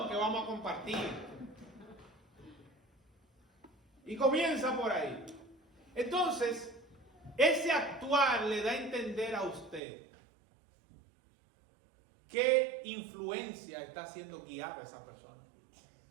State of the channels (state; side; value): drops out; left; at 9.8 s